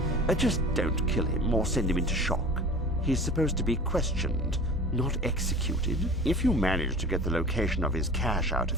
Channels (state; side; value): normal; both; correlation 0.39